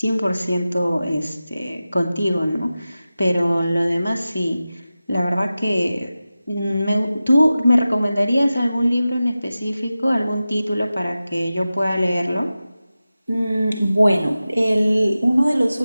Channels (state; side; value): inverted; both; correlation -0.95